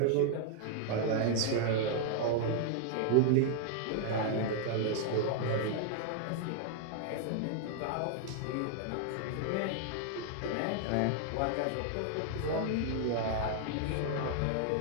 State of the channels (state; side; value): different; both; correlation 0.00